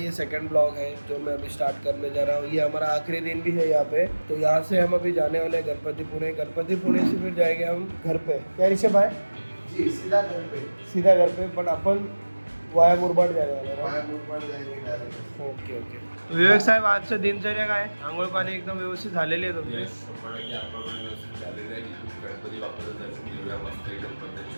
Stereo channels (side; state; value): both; inverted; correlation -1.00